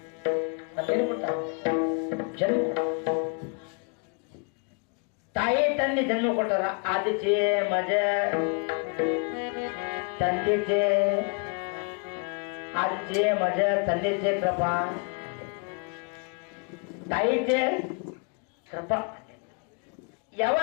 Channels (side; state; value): right; quieter; 35.5 dB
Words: ಮತ್ತೇನು ಕೊಟ್ಟ ಜನ್ಮ ತಾಯಿ ತಂದೆ ಜನ್ಮ ಕೊಟ್ಟಾರ ಆದಿಚೆ ಮಜ ತಂದೆಚೆ ಆದಿಚೆ ಮಜ ತಂದೆಚೆ ಕೃಪಾ ತಾಯಿಚೆ ಕೃಪಾ